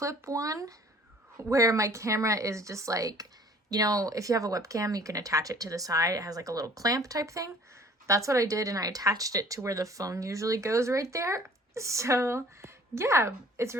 one where my camera is just like, you know, if you have a webcam, you can attach it to the side. It has like a little clamp type thing. That's what I did, and I attached it to where the phone usually goes, right there. So yeah, it's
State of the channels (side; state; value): both; normal; correlation 0.52